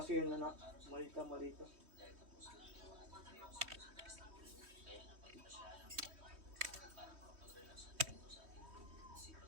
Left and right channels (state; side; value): late; left; 3.1 ms